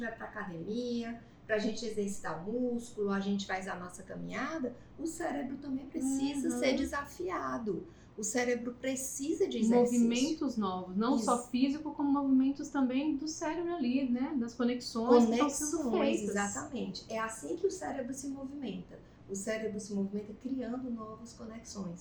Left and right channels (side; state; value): both; identical; correlation 1.00